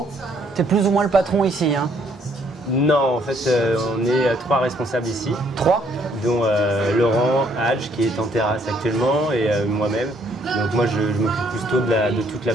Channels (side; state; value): both; normal; correlation 0.66